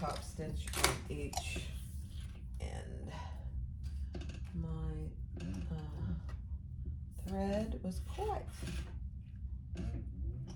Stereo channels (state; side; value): identical; both; correlation 1.00